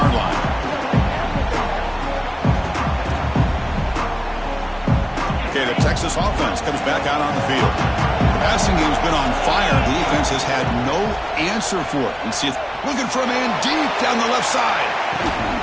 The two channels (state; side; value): identical; both; correlation 1.00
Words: line. Okay, the Texas offense comes back out on the field. The passing game's been on fire. The defense has had no answer for it. And see, looking for a man deep down the left side.